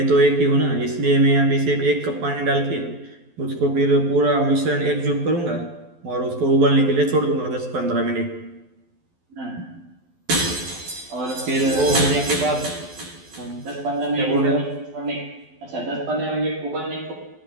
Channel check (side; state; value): left; late; 12 ms